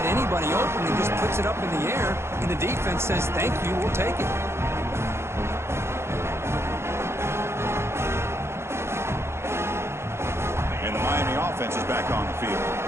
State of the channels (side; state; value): left; late; 0.12 ms